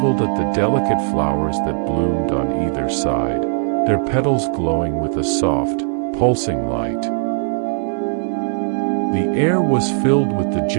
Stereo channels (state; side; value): silent; left; 64 dB below the other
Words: at the delicate flowers that bloomed on either side, their petals glowing with a soft, pulsing light. The air was filled with the